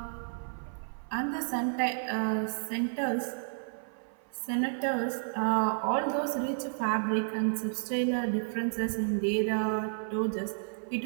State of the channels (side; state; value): left; silent; 57 dB below the other